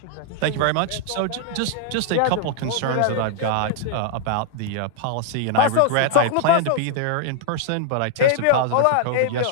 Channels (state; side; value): different; both; correlation -0.01